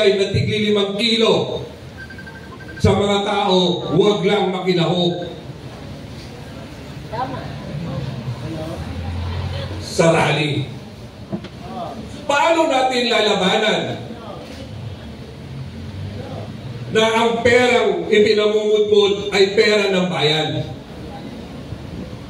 na tigli 5 kilo sa mga tao, huwag lang makinahog. Sa rally. Paano natin lalabanan? na ang perang ipinamumudmod ay pera ng bayan.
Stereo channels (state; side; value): identical; both; correlation 1.00